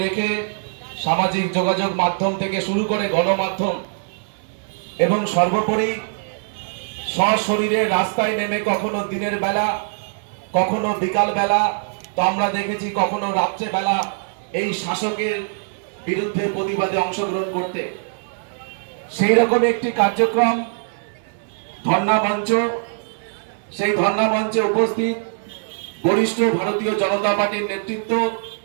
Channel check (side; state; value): left; silent; 64 dB below the other